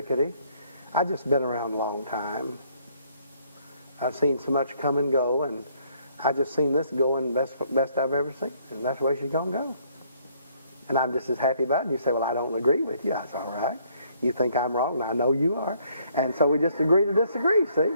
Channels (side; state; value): both; inverted; correlation -0.66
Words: I've just been around a long time. I've seen so much come and go, and I just seen this going best I've ever seen, and that's the way she's going to go. And I'm just as happy about it. And you say, well, I don't agree with you. That's all right. You think I'm wrong, and I know you are. And so we just agree to disagree, see?